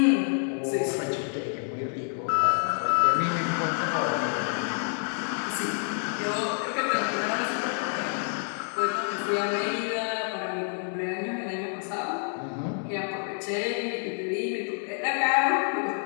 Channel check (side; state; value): right; silent; 56 dB below the other